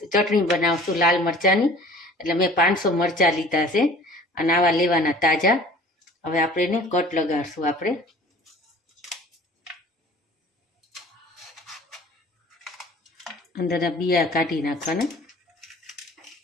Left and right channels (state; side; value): normal; both; correlation 0.47